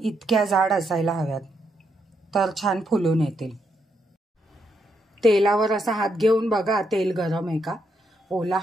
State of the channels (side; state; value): both; normal; correlation 0.78